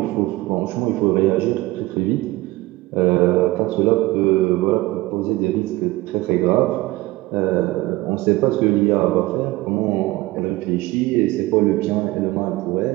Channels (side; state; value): left; quieter; 19.4 dB